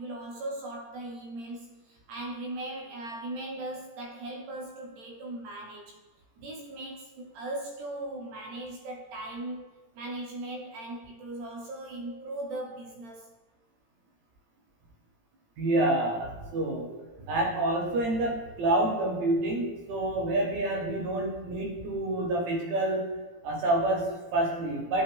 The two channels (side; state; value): left; late; 17 ms